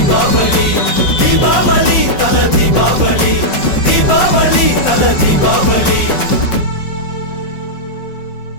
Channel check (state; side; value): late; right; 5.4 ms